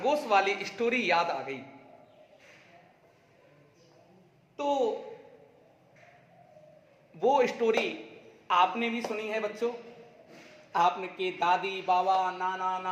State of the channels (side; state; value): both; identical; correlation 1.00